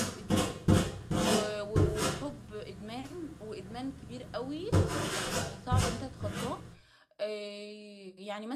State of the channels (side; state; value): both; identical; correlation 1.00